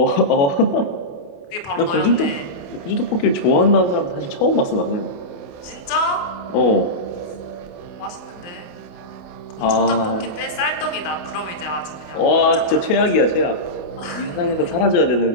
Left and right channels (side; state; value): right; late; 28 ms